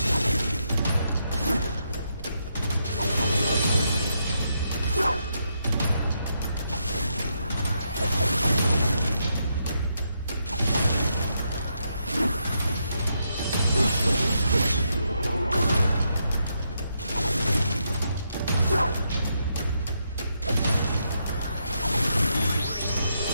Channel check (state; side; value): inverted; both; correlation -0.80